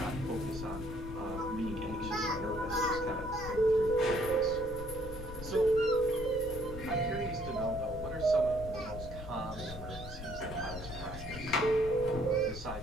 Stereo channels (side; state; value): left; noise; rumble, 10 dB below the sound